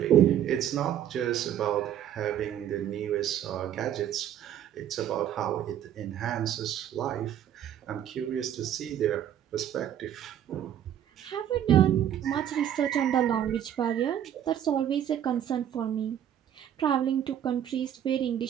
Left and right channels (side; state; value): left; quieter; 10.3 dB